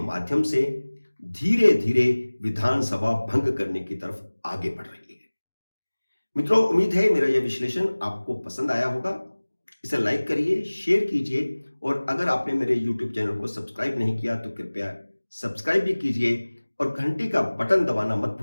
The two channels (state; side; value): inverted; both; correlation -1.00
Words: से धीरे धीरे विधानसभा भंग करने की तरफ आगे बढ़ रही है। मित्रों, उम्मीद है मेरा यह विश्लेषण आपको पसंद आया होगा। इसे लाइक करिए, शेयर कीजिए और अगर आपने मेरे YouTube चैनल को सब्सक्राइब नहीं किया तो कृपया सब्सक्राइब भी कीजिए और घंटी का बटन दबाना मत